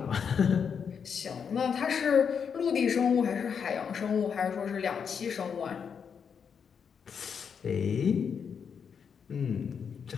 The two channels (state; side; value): quieter; right; 6.8 dB